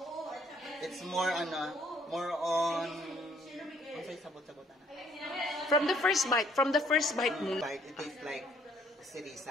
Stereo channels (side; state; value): both; normal; correlation 0.63